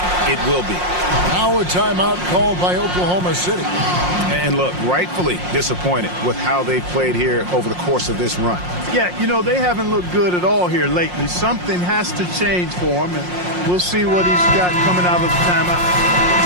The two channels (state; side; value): late; left; 5.6 ms